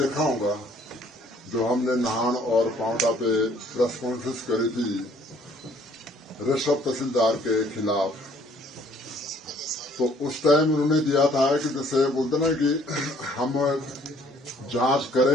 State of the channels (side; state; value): both; normal; correlation 0.60